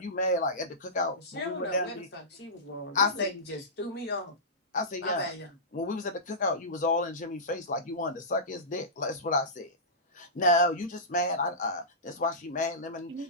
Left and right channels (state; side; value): normal; both; correlation -0.19